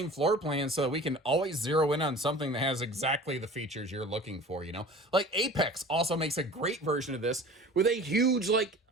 floor plan, so that we can always zero in on something that has exactly the features you're looking for, you know? Like Apex also makes a great version of this with a huge, like,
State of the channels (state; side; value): normal; both; correlation 0.41